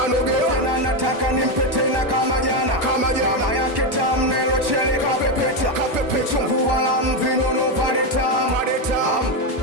tena nataka nimpe tena kama jana. Nyama yake tamu nelo chele kapepeta, vichungu wala mvinono vale tamu.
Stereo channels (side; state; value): left; late; 1.1 ms